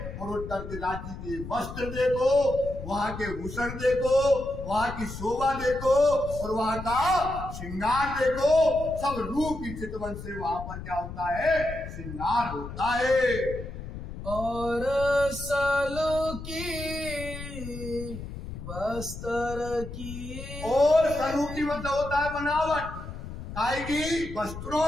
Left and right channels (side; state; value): left; noise; rumble, 10 dB below the sound